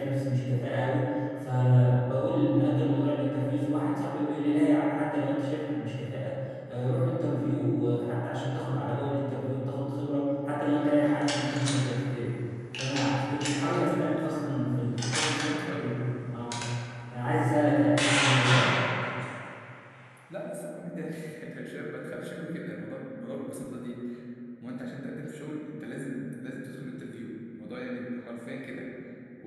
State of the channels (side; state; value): both; identical; correlation 1.00